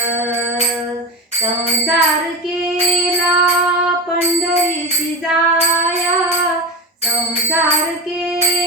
संसार केला पंढरीसी जाया, संसार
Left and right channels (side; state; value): both; normal; correlation 0.21